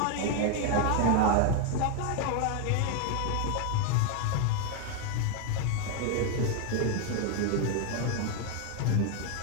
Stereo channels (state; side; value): different; both; correlation 0.01